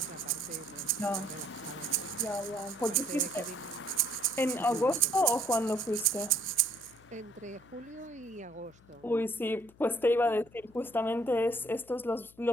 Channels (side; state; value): left; noise; hum, 27 dB below the sound